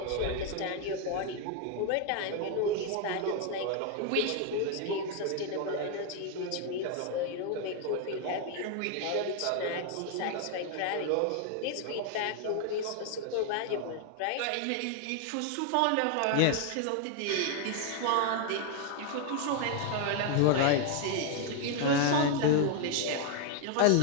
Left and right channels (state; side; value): different; both; correlation 0.01